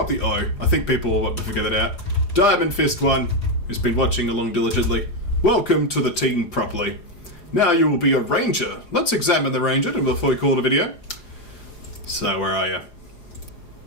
the O. I think people will want to figure that out. Diamond Fist 1, who's been watching along diligently. Welcome to the team properly. Now you will be a ranger. Let's examine the ranger before we call the video. So, where are you?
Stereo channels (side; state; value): right; late; 4.9 ms